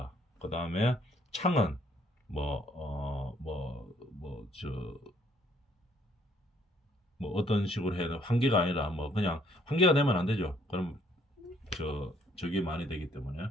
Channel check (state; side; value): normal; both; correlation 0.65